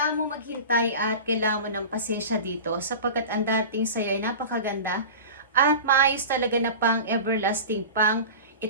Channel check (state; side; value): inverted; both; correlation -0.33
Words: mo maghintay at kailangan mo ng pasensya dito sapagkat ang darating sa'yo ay napakaganda at maayos talaga na pang everlasting, pang